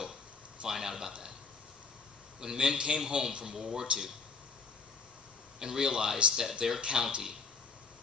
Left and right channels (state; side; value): quieter; right; 4.8 dB